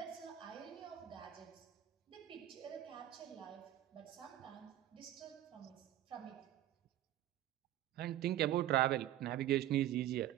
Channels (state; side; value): quieter; left; 12.9 dB